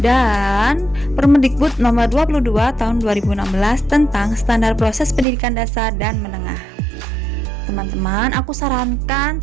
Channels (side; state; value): left; drops out; at 5.2 s